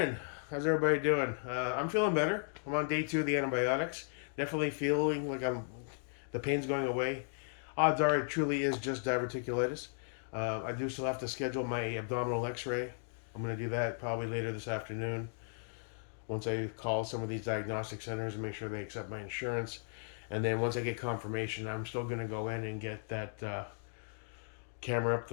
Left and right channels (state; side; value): silent; right; digital silence